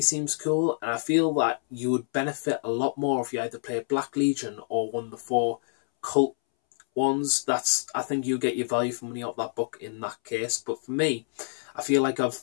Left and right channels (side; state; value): right; silent; 60 dB below the other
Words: cool, and I feel that you would benefit a lot more if you either play Black Legion or one of the 4 cult ones. I think you get your value for money out of that book in that case. But for me, I feel like it